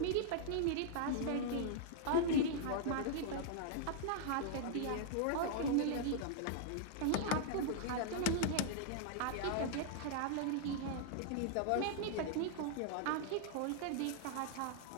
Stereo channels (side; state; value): both; different; correlation -0.01